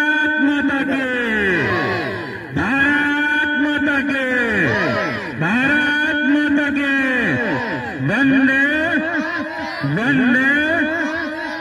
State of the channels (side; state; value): both; identical; correlation 1.00